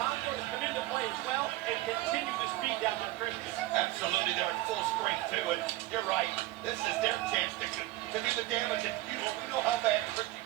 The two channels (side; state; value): left; quieter; 17.4 dB